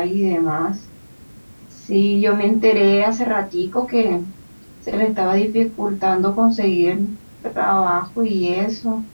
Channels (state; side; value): inverted; both; correlation -1.00